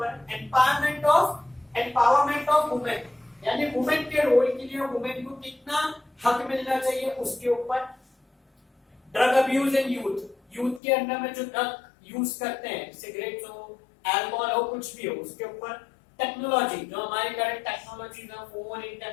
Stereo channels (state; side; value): drops out; right; at 10.8 s